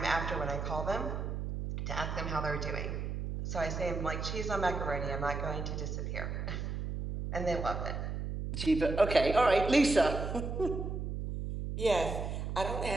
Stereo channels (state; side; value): noise; right; hum, 4 dB below the sound